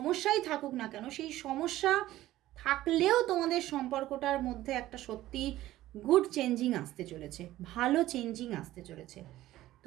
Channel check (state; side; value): quieter; left; 15.1 dB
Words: থাকুক না কেন, সেই সমস্যা থাকলেও তোমাদের সম্পর্কটার মধ্যে একটা সত্যি গুড চেঞ্জিং আসতে চলেছে, ভালো চেঞ্জিং আসতে চলেছে।